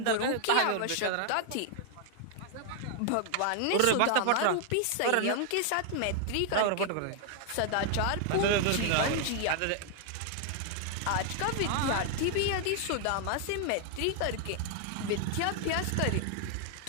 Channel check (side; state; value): both; different; correlation 0.00